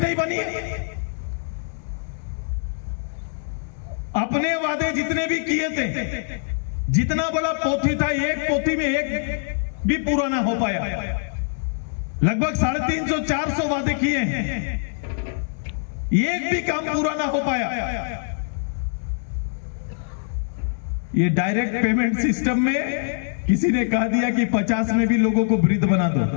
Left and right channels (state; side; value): silent; right; digital silence